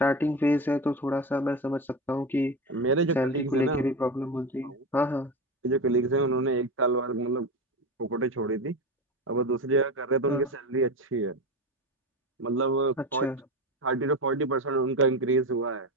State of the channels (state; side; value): normal; both; correlation 0.21